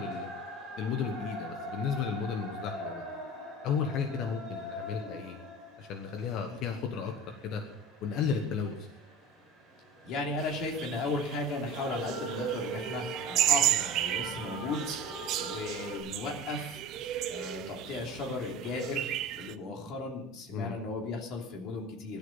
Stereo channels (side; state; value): both; normal; correlation 0.35